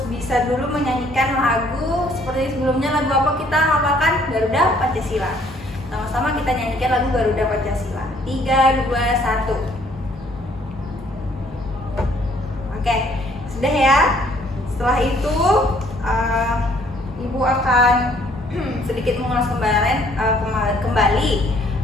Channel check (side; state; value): both; normal; correlation 0.62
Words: bisa dulu menyanyikan lagu seperti sebelumnya. Lagu apa kita hafalkan? Garuda Pancasila. Sama-sama kita nyanyikan lagu Garuda Pancasila. 3, 2, 1. Oke, sudah ya. Setelah itu Ibu akan sedikit mengulas kembali